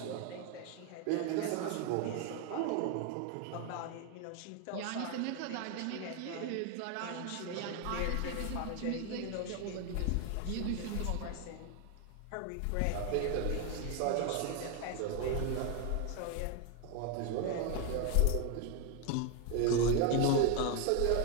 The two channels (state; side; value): different; both; correlation 0.01